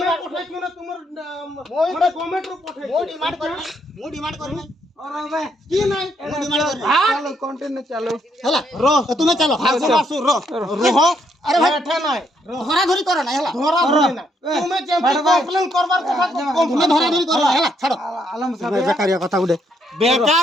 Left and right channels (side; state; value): both; normal; correlation 0.74